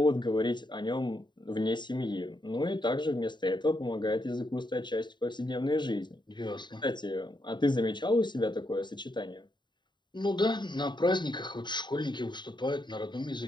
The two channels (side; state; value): right; late; 0.22 ms